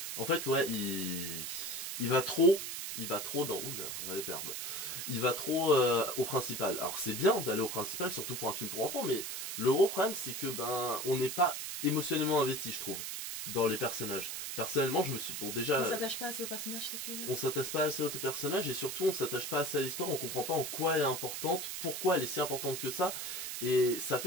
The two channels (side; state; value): right; noise; hiss, 5 dB below the sound